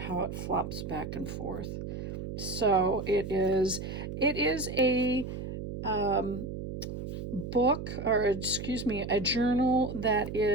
it flops back and forth. So it is a book, or excuse me, a journal that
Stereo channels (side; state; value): right; noise; hum, 7 dB below the sound